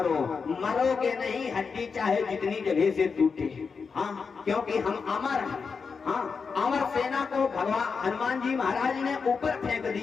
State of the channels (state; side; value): quieter; right; 5.3 dB